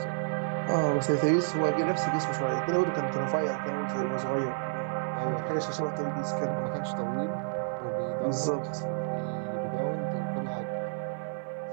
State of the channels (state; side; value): silent; left; digital silence